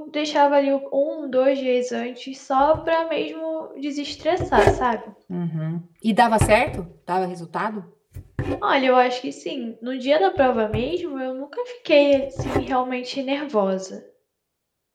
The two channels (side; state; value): both; identical; correlation 1.00